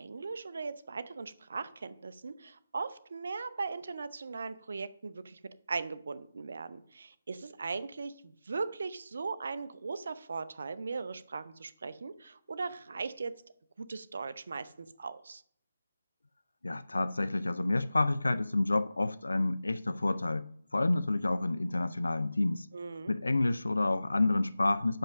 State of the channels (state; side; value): inverted; both; correlation -0.95